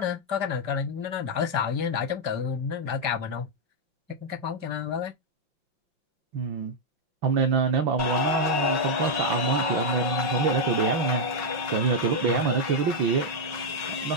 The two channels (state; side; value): late; left; 5.3 ms